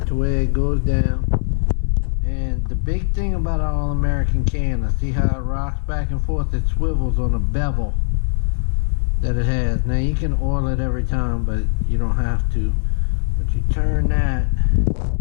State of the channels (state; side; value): silent; right; 66 dB below the other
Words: to where it goes down. And the big thing about an All-American canner, see how it rocks back and forth? It swivels on a bevel that it has. Now you can oil it every time, but you don't have to. But you turn that